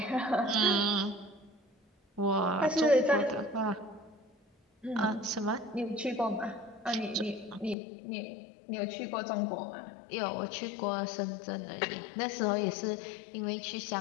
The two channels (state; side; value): drops out; right; at 7.8 s